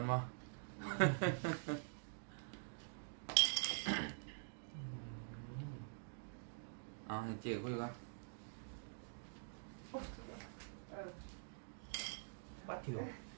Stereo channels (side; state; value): left; silent; digital silence